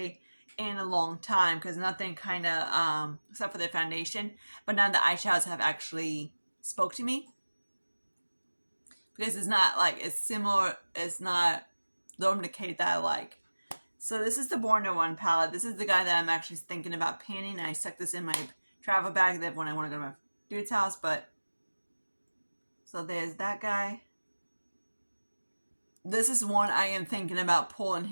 in a long time because nothing kind of except for the foundation, but none of the eyeshadows have actually spoke to me because it's not like it's similar. It's not the Decay that I like. So this is the Born to One palette. This is the guy that I'm actually thinking about painting. I stuck this in my travel bag that when I want to go to my dude's house, but so there's that guy. This is one I am thinking about pulling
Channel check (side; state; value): both; inverted; correlation -1.00